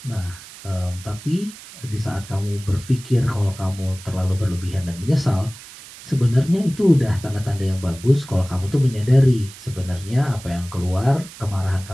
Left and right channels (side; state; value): right; noise; hiss, 17 dB below the sound